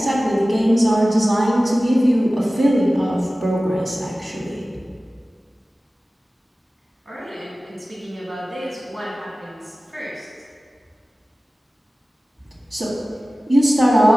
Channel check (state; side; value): normal; both; correlation 0.97